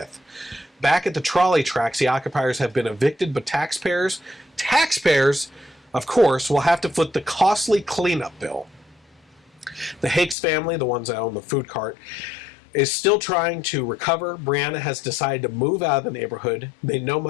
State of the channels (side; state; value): right; drops out; at 10.4 s